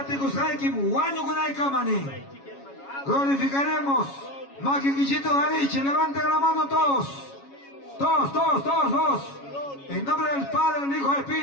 Haikim, Wanyo Gunai Kamani, glorificaremos. Maquiquichito Gariche, levanten la mano todos. Todos. En nombre del Padre, del Hijo y del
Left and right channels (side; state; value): right; late; 7.2 ms